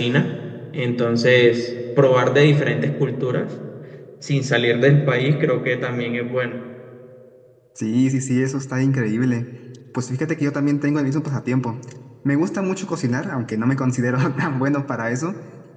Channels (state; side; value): identical; both; correlation 1.00